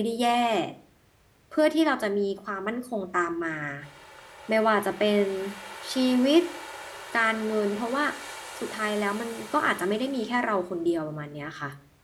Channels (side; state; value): both; identical; correlation 1.00